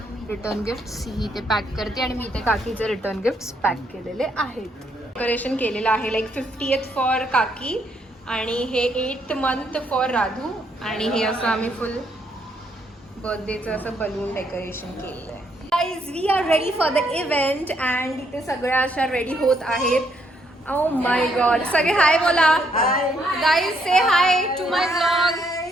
रिटर्न गिफ्ट्स ही इथे पॅक करते आणि मी इथे काकीचे रिटर्न गिफ्ट्स पॅक केलेले आहेत. डेकोरेशन केलेलं आहे, लाईक 50th फॉर काकी आणि हे 8th month फॉर राधू. आणि हे असं आम्ही फुल बर्थडेचं असं बलून डेकोरेशन केलेलं आहे. Guys, we are ready for the event and इथे सगळ्या अशा रेडी होत आहेत. Oh my god. सगळे हाय बोला. Guys say hi to my blog.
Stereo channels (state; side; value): normal; both; correlation 0.73